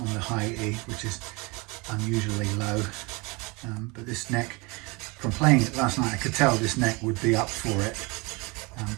the high E, which is unusually low. But this neck, from playing it last night, I could tell this neck would be up for it.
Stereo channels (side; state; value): left; quieter; 26.9 dB